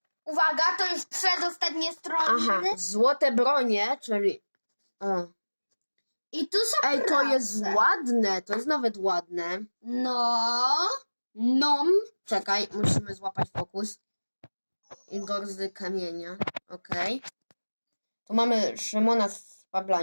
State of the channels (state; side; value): inverted; both; correlation -1.00